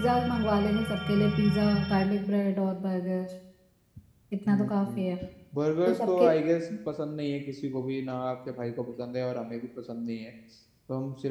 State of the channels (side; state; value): both; identical; correlation 1.00